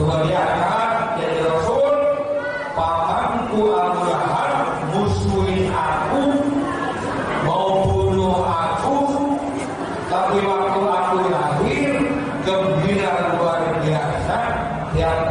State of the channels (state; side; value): identical; both; correlation 1.00